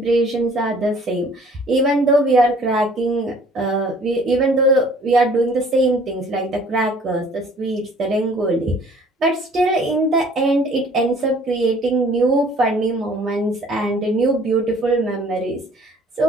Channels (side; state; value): both; normal; correlation 0.54